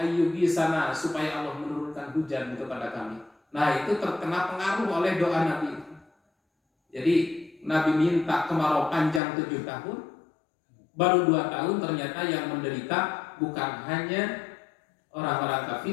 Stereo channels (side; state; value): right; drops out; at 9.2 s